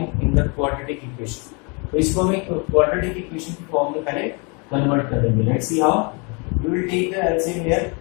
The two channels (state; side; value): quieter; right; 32.5 dB